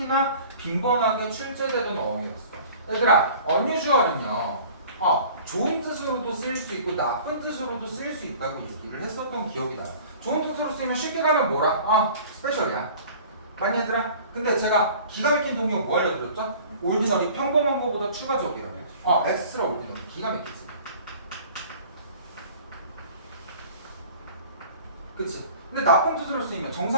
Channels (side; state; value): both; inverted; correlation -0.46